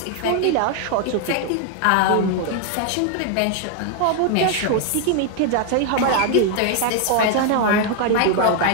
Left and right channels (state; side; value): different; both; correlation 0.00